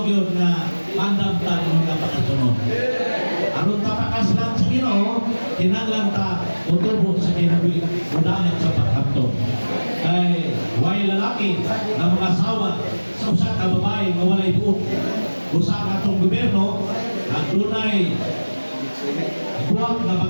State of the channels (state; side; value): inverted; both; correlation -1.00